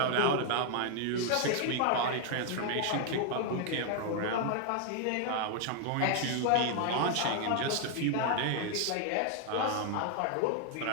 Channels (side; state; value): both; different; correlation 0.00